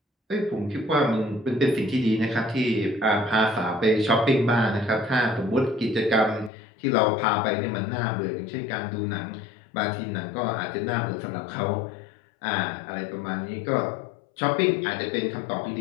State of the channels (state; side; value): drops out; right; at 6.5 s